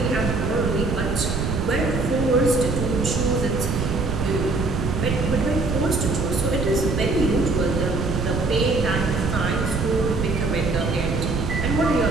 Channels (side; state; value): right; noise; rumble, 2 dB below the sound